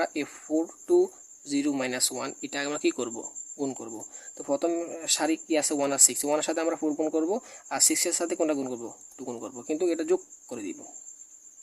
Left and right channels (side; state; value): both; identical; correlation 1.00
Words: 4 টু 0 মাইনাস 1 এটা আমরা কি করব, গুণ করব। তো প্রথম সারি কি আছে 1 আর 6, 1 এর সাথে আমরা 4 গুণ করব, আর 6 এর সাথে কোনটা গুণ করব 2 গুণ করব, কিন্তু এটা যোগ করে দিব,